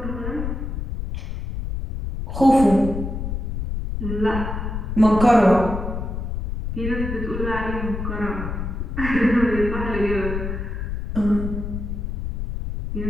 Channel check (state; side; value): noise; left; rumble, 4 dB below the sound